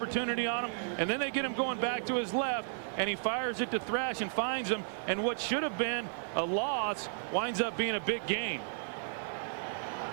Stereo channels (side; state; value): left; silent; 55 dB below the other